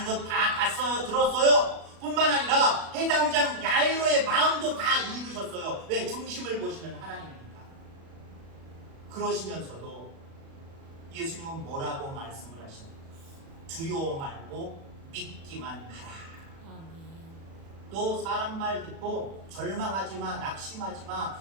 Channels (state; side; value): late; left; 36 ms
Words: 건 다 봤어요. 들었어요. 뿐만 아니라 해당장 야이로의 마음도 다 읽으셨어요. 왜? 중심을 보시는 하나님이니까. 그러시면서도 예수님은 뭐라고 말씀을 하십니까? 두려워 말고 믿기만 하라. 또 사람 말 듣고 절망하지 마, 낙심하지 마,